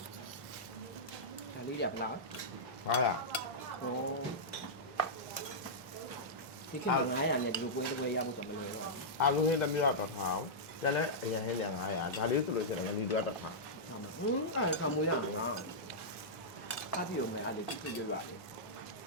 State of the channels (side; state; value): both; normal; correlation -0.11